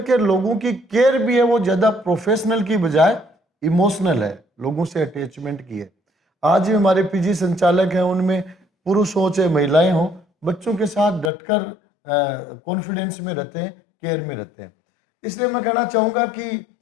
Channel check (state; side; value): drops out; right; at 11.3 s